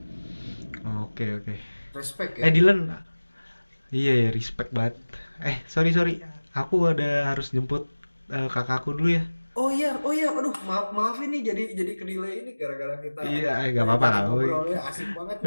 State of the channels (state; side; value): inverted; both; correlation -1.00